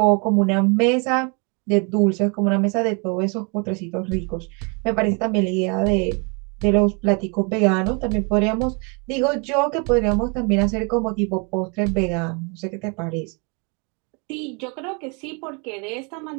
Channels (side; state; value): left; quieter; 33.7 dB